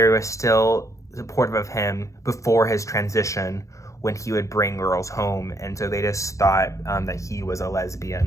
were still supportive of him before his transition when he would bring girls home, and so they just thought that he was a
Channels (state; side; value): late; right; 0.15 ms